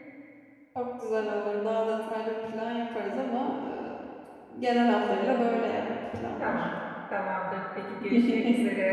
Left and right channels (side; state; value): both; identical; correlation 1.00